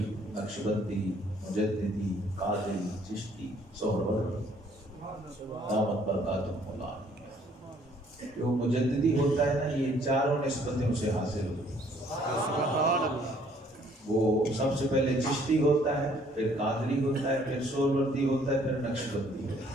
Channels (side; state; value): both; normal; correlation 0.62